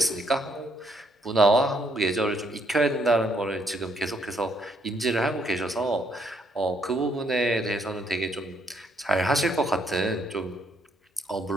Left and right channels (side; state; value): both; normal; correlation 0.71